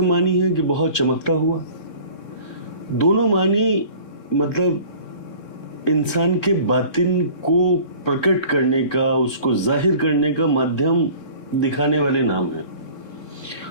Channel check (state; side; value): late; right; 3.7 ms